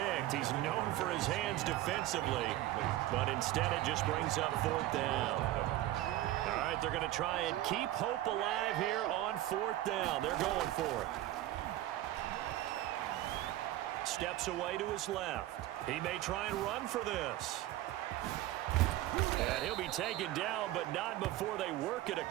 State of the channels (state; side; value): quieter; left; 14.9 dB